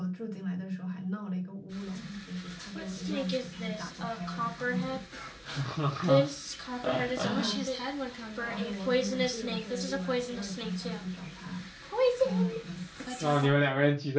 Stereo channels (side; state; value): both; identical; correlation 1.00